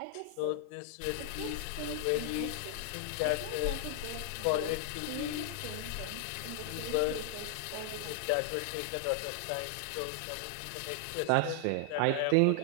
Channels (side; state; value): both; different; correlation 0.00